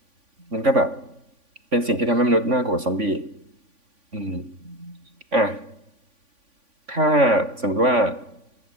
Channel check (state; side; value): late; left; 3.5 ms